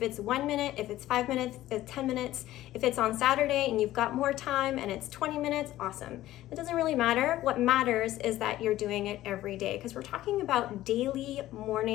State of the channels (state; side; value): quieter; right; 14.9 dB